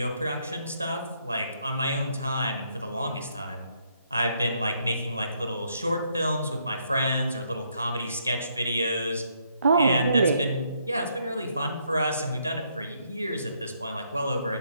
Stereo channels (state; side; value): inverted; both; correlation -0.73